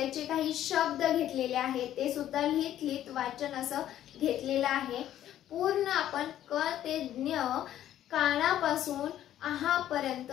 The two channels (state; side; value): quieter; right; 11.9 dB